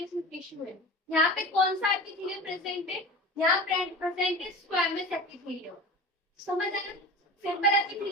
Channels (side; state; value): both; normal; correlation 0.33